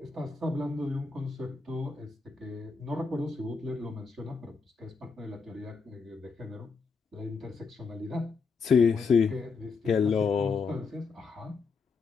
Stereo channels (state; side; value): quieter; right; 5.0 dB